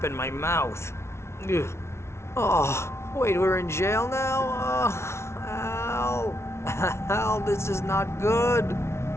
in my mouth. Ugh. Oh, wait, we're in jail now? Al. Al, this is not good.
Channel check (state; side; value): late; right; 0.13 ms